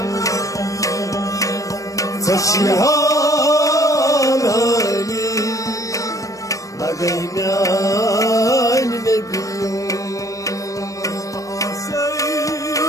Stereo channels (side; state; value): right; late; 0.16 ms